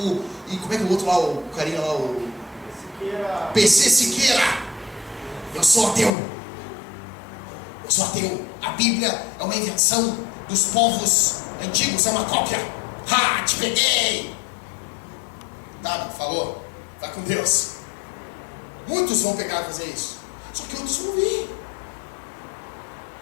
E como é que é o outro lá, o carinha lá, o... Siqueira. PC Siqueira. Eu sou ateu. A Bíblia é uma invenção dos povos antigos, é uma cópia. Ha, te peguei. Tá, falou. Vai com Deus. Muitos vão pegar e fazer isso. Só que outros vão vir.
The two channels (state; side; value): drops out; right; at 6.1 s